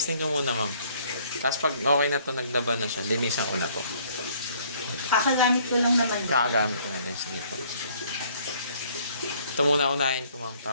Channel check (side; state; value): both; inverted; correlation -0.61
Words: ko muna ma'am. Tapos pag okay na to, naglaban na siya, linisan ko na to. Kakagamit ko lang naman. Kakagamit ko na din. Sige po. Ito muna unahin ko ma'am,